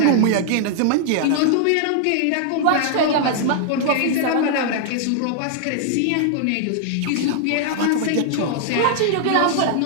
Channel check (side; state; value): both; different; correlation 0.00